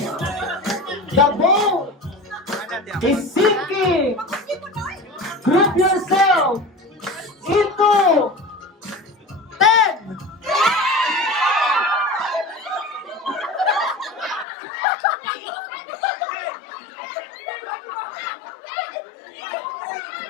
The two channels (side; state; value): right; drops out; at 14.5 s